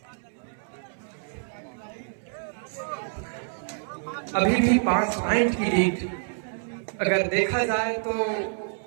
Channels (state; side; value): silent; left; 60 dB below the other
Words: अभी भी 5 पॉइंट की लीड अगर देखा जाए तो